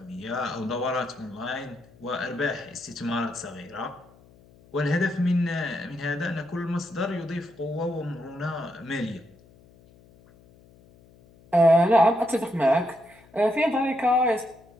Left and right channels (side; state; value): left; noise; hum, 27 dB below the sound